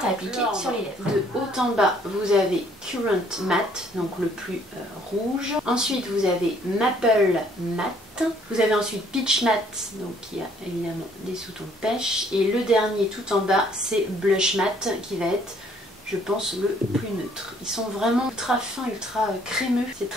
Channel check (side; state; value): both; normal; correlation 0.62